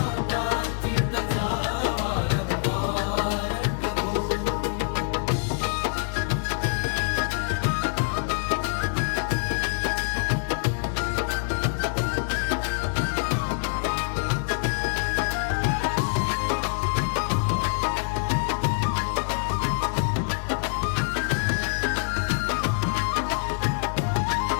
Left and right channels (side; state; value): right; silent; digital silence